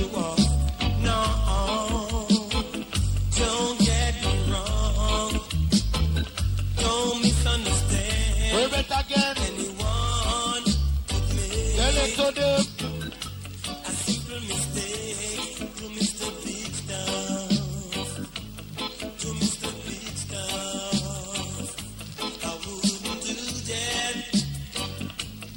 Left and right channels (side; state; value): both; identical; correlation 1.00